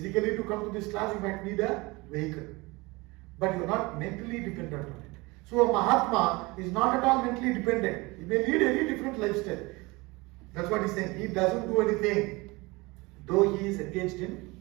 to come to this class, you might need a vehicle, but you are not mentally dependent on it. So a Mahatma is not at all mentally dependent. He may lead any different lifestyle. That's what he's saying. He doesn't do anything, though he is engaged in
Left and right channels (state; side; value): quieter; left; 23.9 dB